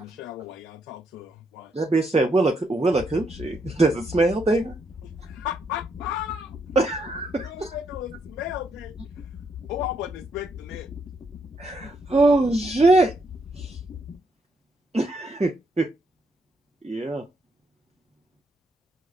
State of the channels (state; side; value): normal; both; correlation 0.76